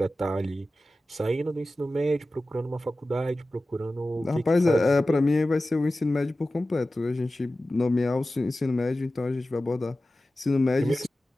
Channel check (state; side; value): normal; both; correlation 0.95